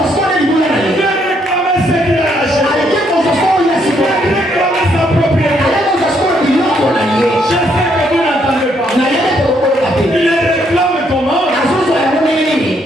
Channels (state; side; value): normal; both; correlation 0.72